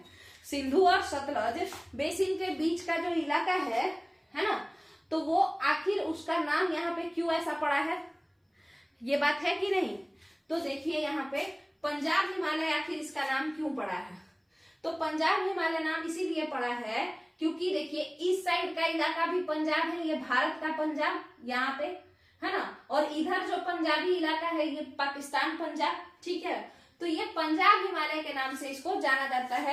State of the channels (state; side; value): identical; both; correlation 1.00